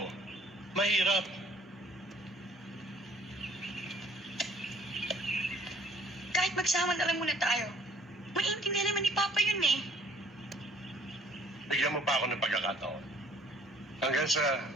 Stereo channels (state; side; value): normal; both; correlation 0.56